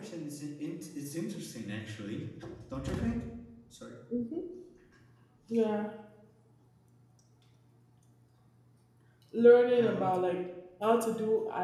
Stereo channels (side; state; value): both; identical; correlation 1.00